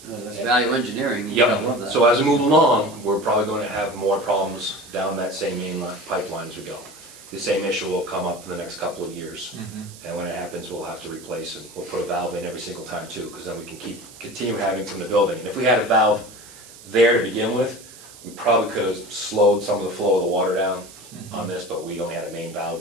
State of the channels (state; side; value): noise; right; hiss, 19 dB below the sound